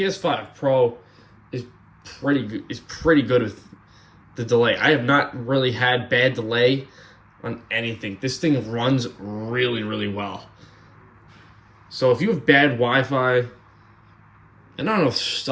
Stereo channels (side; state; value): both; identical; correlation 1.00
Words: Pro is pretty good with the delay. I have not really had bad delay on anything. This thing runs really, really well. So if you have bad Wi-Fi, and I don't know if